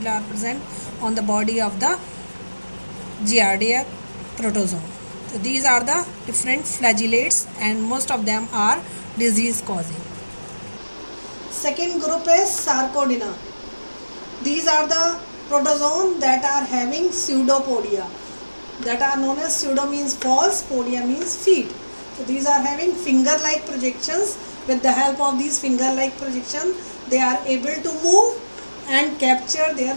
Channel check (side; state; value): both; inverted; correlation -1.00